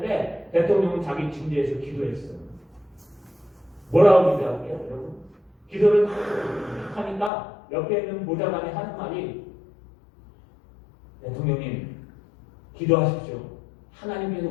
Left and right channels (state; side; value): drops out; right; at 7.3 s